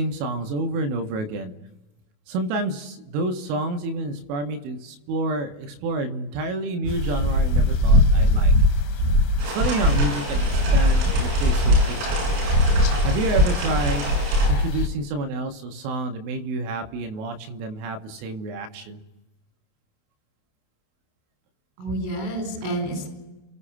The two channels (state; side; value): late; left; 27 ms